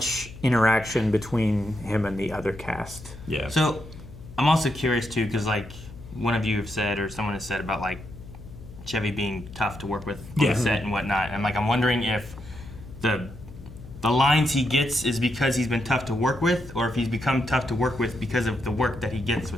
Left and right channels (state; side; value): noise; left; hum, 16 dB below the sound